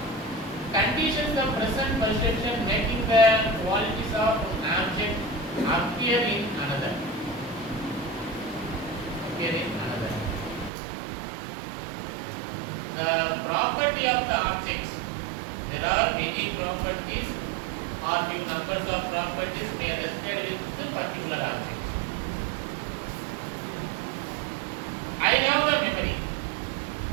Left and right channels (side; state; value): left; drops out; at 10.7 s